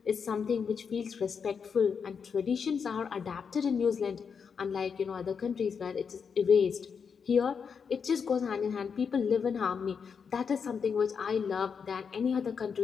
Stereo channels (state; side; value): quieter; right; 6.3 dB